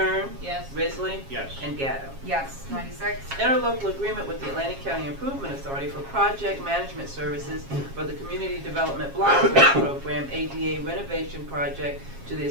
Yes. Risley? Yes. And Gatto. Yes. 96. Interlocal agreement with the Atlantic County Improvement Authority for project management services for the Community Development Block Grant Program ADA renovation project to the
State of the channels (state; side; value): late; left; 7.3 ms